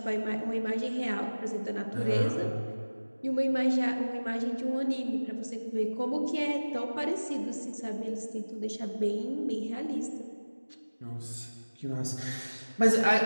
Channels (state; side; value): inverted; both; correlation -1.00